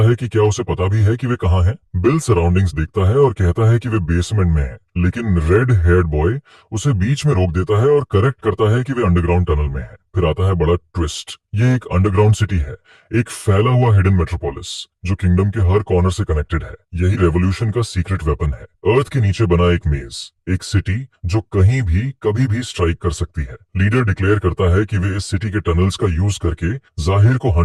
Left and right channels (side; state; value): both; identical; correlation 1.00